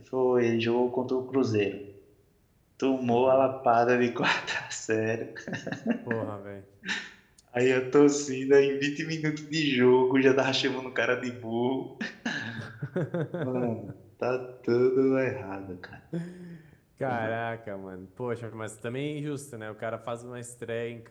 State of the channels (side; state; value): both; identical; correlation 1.00